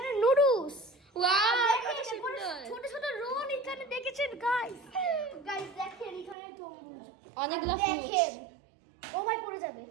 নুডলস। ছোট ছোট রোল এখানে দেখেছেন গাইস দেখেন এখানে তরমুজ অনেকগুলো দেখেন। ও ভাই পড়ে যাবে।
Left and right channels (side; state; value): left; drops out; at 6.4 s